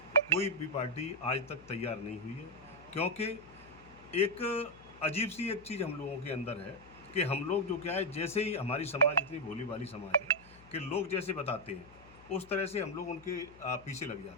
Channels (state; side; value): noise; left; hum, 23 dB below the sound